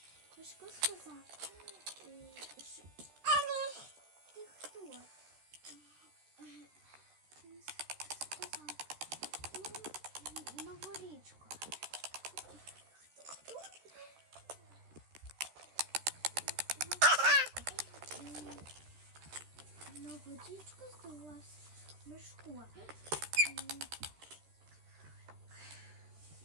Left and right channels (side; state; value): left; late; 14 ms